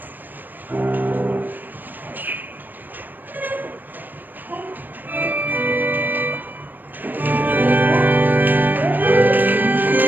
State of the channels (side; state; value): left; late; 0.090 ms